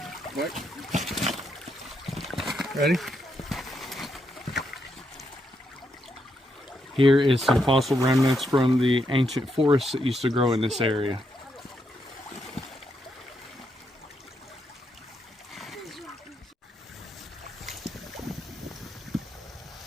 What? Ready? Here is some fossil remnants from the ancient forests that used to grow in this area.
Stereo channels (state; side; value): normal; both; correlation 0.80